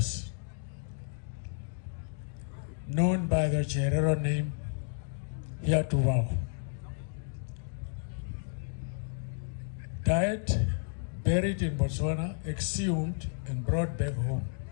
known by the Cherero name, here to vow. Died, buried in Botswana, exhumed and brought back home.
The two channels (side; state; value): right; silent; digital silence